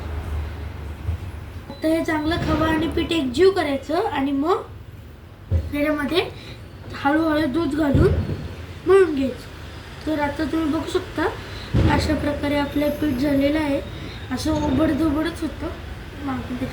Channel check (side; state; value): both; identical; correlation 1.00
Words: आता हे चांगलं खवा आणि पीठ एकजीव करायचं आणि मग त्याच्यामध्ये हळूहळू दूध घालून मळून घ्यायचं. तर आता तुम्ही बघू शकता अशा प्रकारे आपलं पीठ झालेलं आहे. असं उबडधोबडच होतं. मग आपण